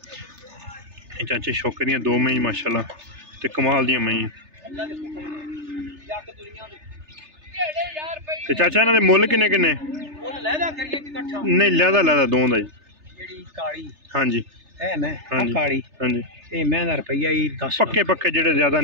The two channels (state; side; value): late; left; 3.3 ms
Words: ये चाचे शौके दियां दो मई माशाल्लाह ते कमाल दियां मई ते चाचा इन्हां दे मुੱਲ किन्ने किन्ने मुੱਲ लहदा करिए कि इकट्ठा नहीं लहदा लहदा दों दा जी जेडी काली हां जी है मैं हां जी काली हां जी ए मैं दा रुपया ही 10 पक्के पक्के जेडे ज्यादा